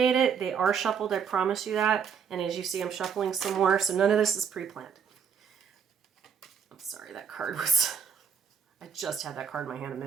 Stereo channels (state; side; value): quieter; left; 7.0 dB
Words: it. They are shuffled, I promise you that. And as you see, I'm shuffling some more, so none of this is pre-planned. Sorry, that card was... I just had that card in my hand a